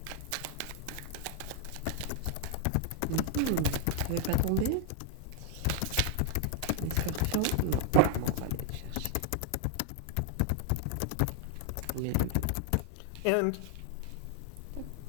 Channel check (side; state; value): both; different; correlation 0.00